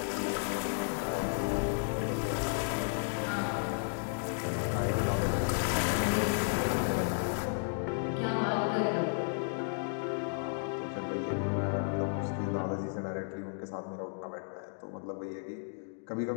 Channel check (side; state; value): right; silent; digital silence